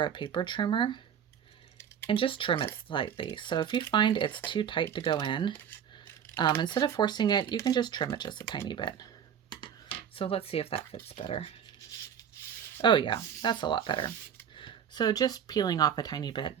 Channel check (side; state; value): left; quieter; 8.5 dB